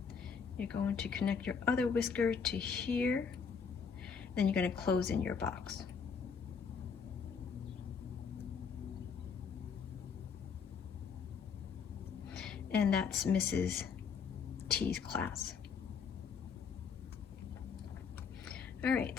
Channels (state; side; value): quieter; right; 6.1 dB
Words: You're going to connect your other whisker to here. Then you're going to close in your box. And that's Mrs. T's class. All right,